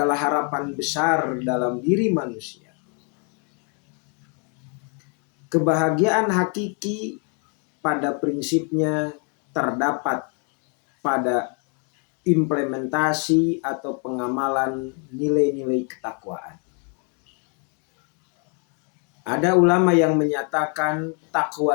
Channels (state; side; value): quieter; right; 38.8 dB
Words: harapan besar dalam diri manusia. Kebahagiaan hakiki pada prinsipnya terdapat pada implementasi atau pengamalan nilai-nilai ketakwaan. Ada ulama yang menyatakan